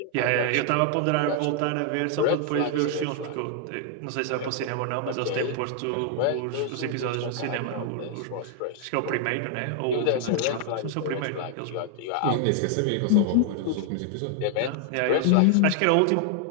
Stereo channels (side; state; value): both; different; correlation 0.00